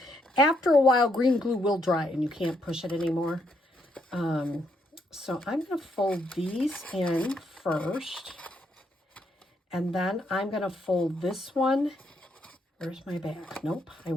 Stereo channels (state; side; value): normal; both; correlation 0.75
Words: After a while, green glue will dry and you can't push it anymore. So I'm going to fold these in first. And then I'm going to fold this one. Where's my back? Nope. I